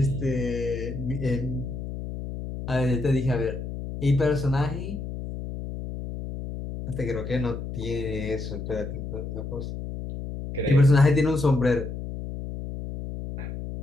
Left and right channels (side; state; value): left; noise; hum, 7 dB below the sound